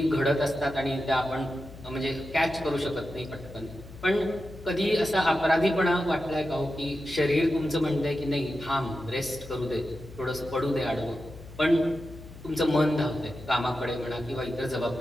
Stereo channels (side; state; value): left; noise; hum, 16 dB below the sound